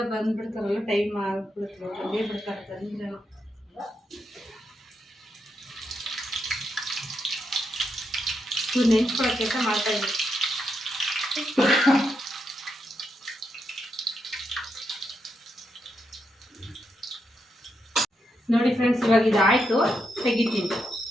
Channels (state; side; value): normal; both; correlation 0.82